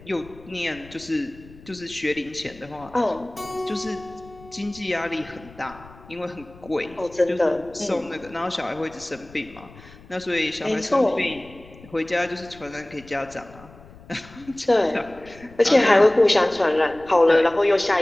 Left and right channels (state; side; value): noise; left; rumble, 21 dB below the sound